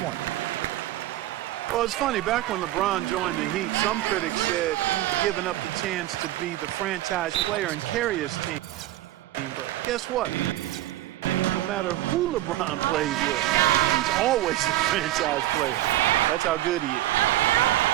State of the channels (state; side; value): quieter; left; 15.1 dB